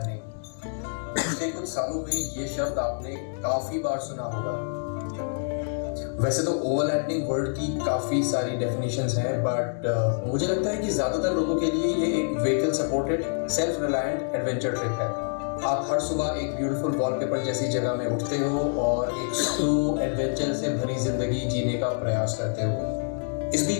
पिछले कुछ सालों में ये शब्द आपने काफी बार सुना होगा। वैसे तो ओवरलैंडिंग वर्ड की काफी सारी डेफिनेशंस हैं, बट मुझे लगता है कि ज्यादातर लोगों के लिए ये एक vehicle supported self reliant adventure trip है। आप हर सुबह एक ब्यूटीफुल वॉलपेपर जैसी जगह में उठते हो और एक स्लो एडवेंचर से भरी जिंदगी जीने का प्रयास करते हो। इस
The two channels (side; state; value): right; silent; digital silence